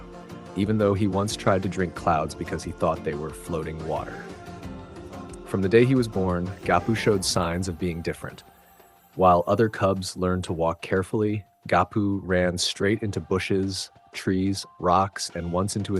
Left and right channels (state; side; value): identical; both; correlation 1.00